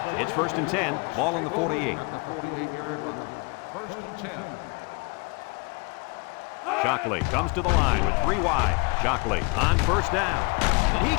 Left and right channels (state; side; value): quieter; right; 31.1 dB